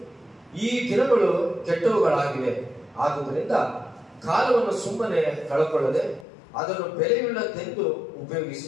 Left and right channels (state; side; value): drops out; right; at 6.2 s